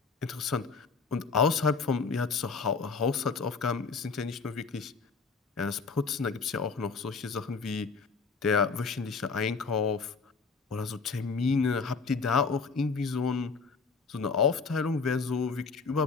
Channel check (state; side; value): quieter; right; 4.9 dB